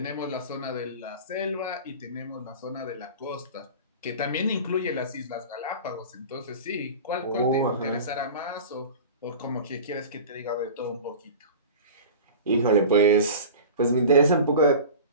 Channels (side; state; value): both; inverted; correlation -0.36